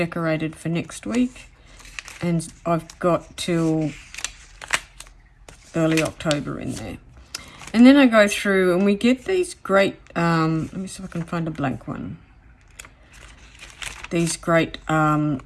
for next week, and I've got till early October in there. And then I go through and we get these great, let me see if I can find a blank one. These great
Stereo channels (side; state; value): both; identical; correlation 1.00